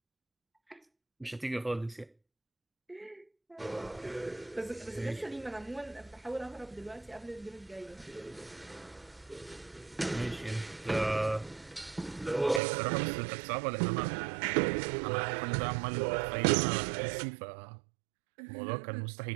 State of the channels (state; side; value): drops out; left; at 12.6 s